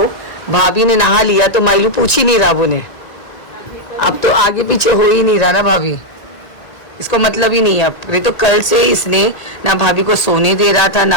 भाभी ने नहा लिया तो माइलू पूछ ही नहीं रहा वो ने। अब तो आगे पीछे हो ही नहीं रहा ना भाभी, इसको मतलब ही नहीं है। अब तो कल से इसने ना भाभी को सोने दे रहा था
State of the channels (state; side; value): late; right; 1.8 ms